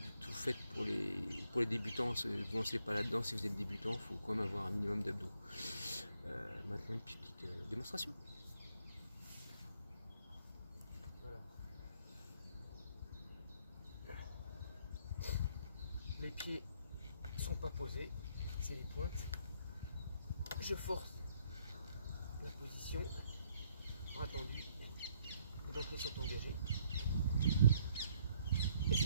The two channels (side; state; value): both; inverted; correlation -0.69